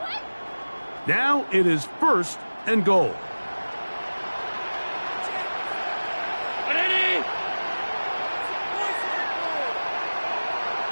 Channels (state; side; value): inverted; both; correlation -1.00